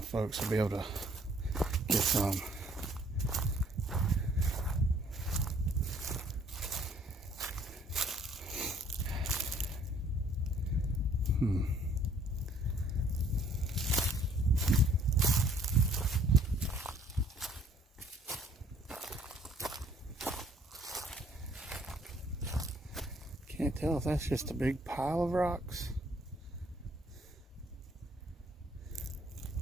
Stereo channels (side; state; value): both; normal; correlation 0.60